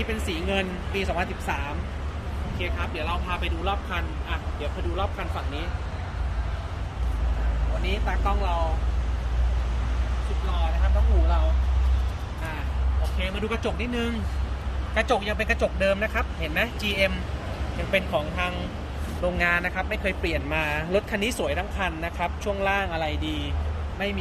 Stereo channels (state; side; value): identical; both; correlation 1.00